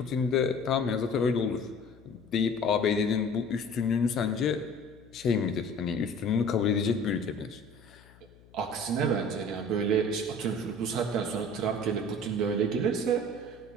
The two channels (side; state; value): left; noise; hum, 25 dB below the sound